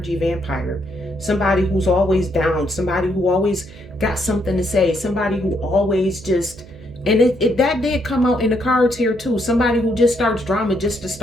vampire. Somebody who's always down, somebody who always got something to say, somebody who always just, and that did come out in the cards here too. Somebody who just starts drama just to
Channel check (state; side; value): noise; right; hum, 20 dB below the sound